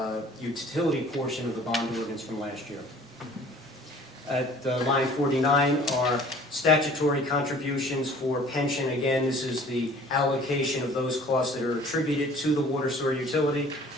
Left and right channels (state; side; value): normal; both; correlation 0.50